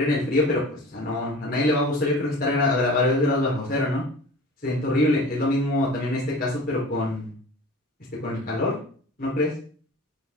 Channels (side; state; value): both; normal; correlation 0.40